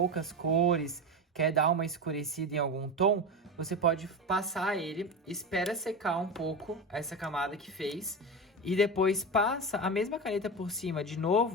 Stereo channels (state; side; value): normal; both; correlation 0.21